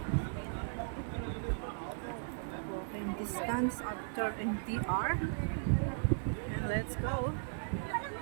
Walking distance after MTR. And let's go.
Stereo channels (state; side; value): silent; left; 53 dB below the other